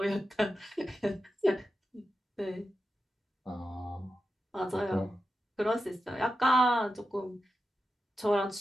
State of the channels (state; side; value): normal; both; correlation 0.90